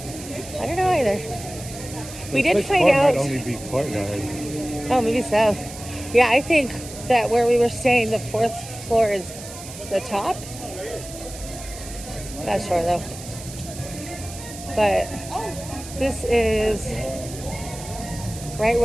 I don't know either. We The did sixth find floor out. might only be courtyard. Oh, maybe so. Yeah, I think that where we were staying, the fourth floor is the top. Not sure though. But this is right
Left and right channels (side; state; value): right; noise; hiss, 13 dB below the sound